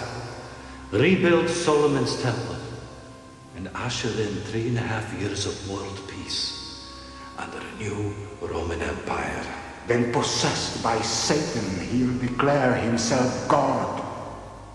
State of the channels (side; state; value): both; identical; correlation 1.00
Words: rebuild Solomon's temple, and usher in 3.5 years of world peace under a new Roman Empire. When possessed by Satan, he'll declare himself God